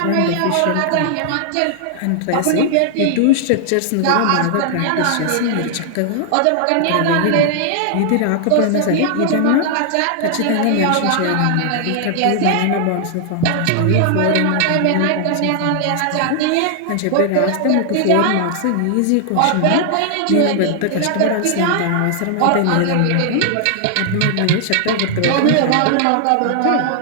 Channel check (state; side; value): different; both; correlation 0.00